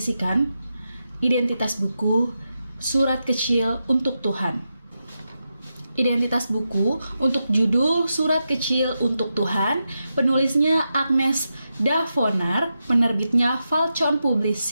identitas buku Surat Kecil untuk Tuhan. Identitas buku untuk judul Surat Kecil untuk Tuhan, penulisnya Agnes Davonar, penerbitnya Falcon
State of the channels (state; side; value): inverted; both; correlation -0.88